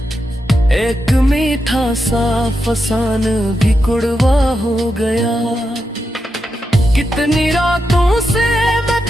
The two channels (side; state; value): both; normal; correlation 0.86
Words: एक मीठा सा फसान भी कुड़वा हो गया। कितनी रातों से मैं